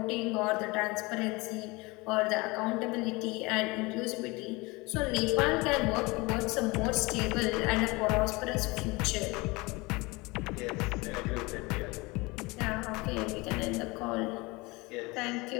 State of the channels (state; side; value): quieter; right; 24.3 dB